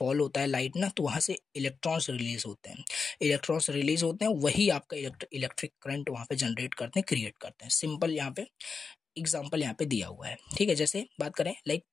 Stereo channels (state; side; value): quieter; right; 5.1 dB